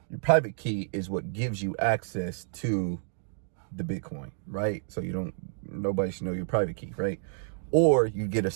Your private key is what gives you access to the Bitcoin, right? So nobody should know your private key, right? Or you get a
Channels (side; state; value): left; silent; digital silence